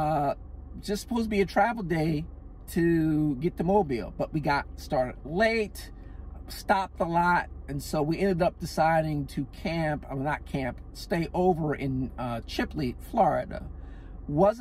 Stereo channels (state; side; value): identical; both; correlation 1.00